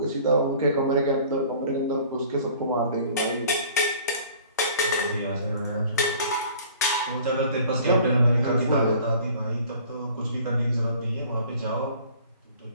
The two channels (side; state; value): both; inverted; correlation -0.50